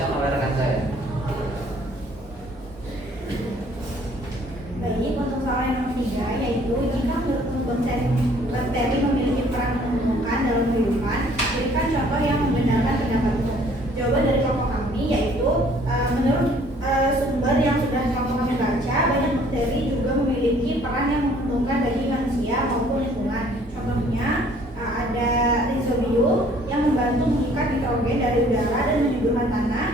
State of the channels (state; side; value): normal; both; correlation 0.58